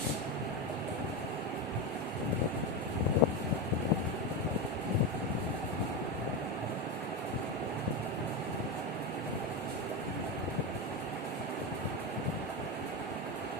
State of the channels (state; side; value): normal; both; correlation 0.14